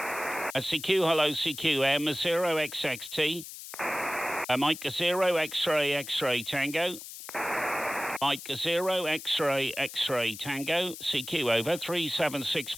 CQ, hello, CQ, M0XXT. Mike 0 X-ray X-ray Tango. Mike 0 X-ray X-ray Tango. CQ, over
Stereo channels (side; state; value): left; noise; hiss, 12 dB below the sound